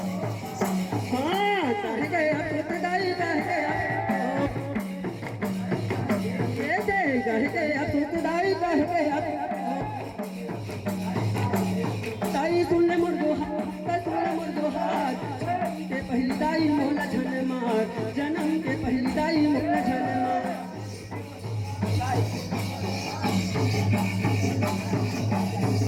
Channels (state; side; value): identical; both; correlation 1.00